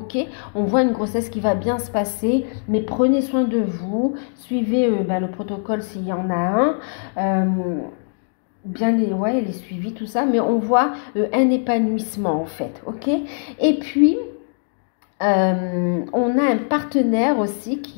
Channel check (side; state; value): right; silent; digital silence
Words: On voit une grossesse qui va bien se passer, mais prenez soin de vous, suivez le protocole s'il y en a un, bien les suivis, tout ça, mais on voit un épanouissement en fait, ok? Et puis on a un partenaire aussi